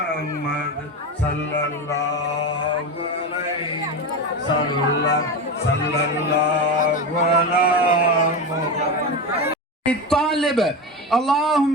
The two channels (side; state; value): both; normal; correlation 0.20